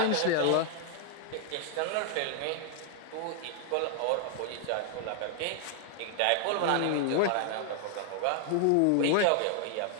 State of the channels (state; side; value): different; both; correlation 0.00